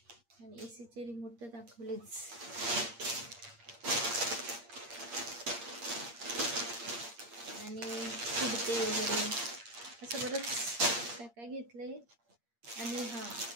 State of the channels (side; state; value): left; late; 8.6 ms